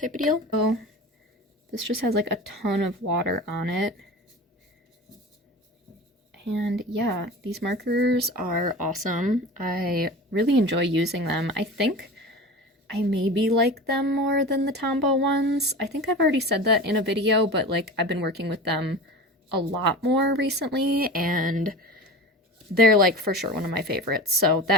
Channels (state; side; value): normal; both; correlation 0.33